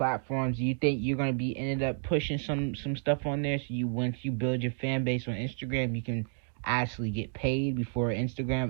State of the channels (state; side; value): silent; left; 57 dB below the other